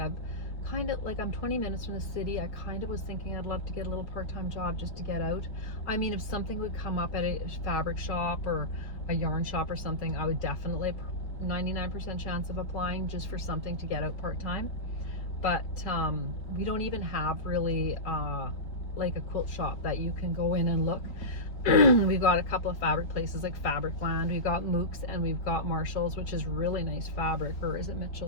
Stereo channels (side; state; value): right; late; 4.4 ms